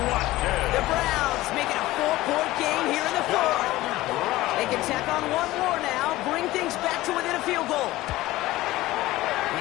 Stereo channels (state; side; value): quieter; right; 17.4 dB